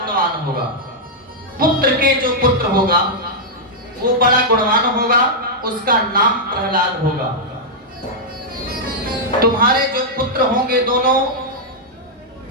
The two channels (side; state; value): both; normal; correlation -0.06